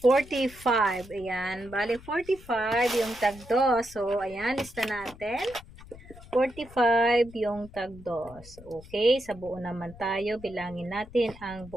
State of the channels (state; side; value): noise; left; rumble, 19 dB below the sound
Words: 45. Ayan. Bali, 45 yung tag 2. So, ayan. Lista natin. 45 yung tag 2. Okay. Sa buo naman tayo. Bilangin natin ang